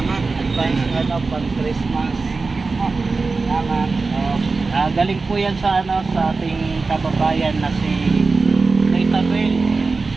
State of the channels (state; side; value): quieter; left; 4.0 dB